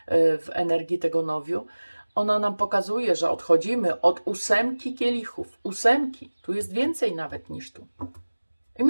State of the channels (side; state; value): both; inverted; correlation -1.00